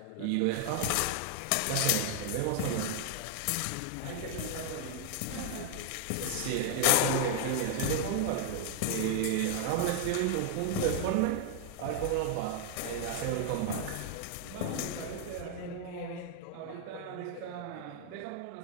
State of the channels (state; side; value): different; both; correlation 0.00